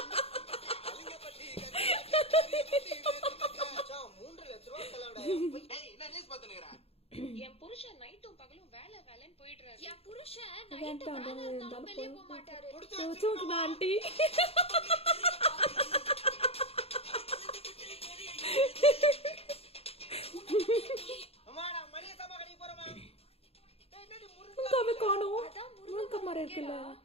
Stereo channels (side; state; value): right; late; 0.29 ms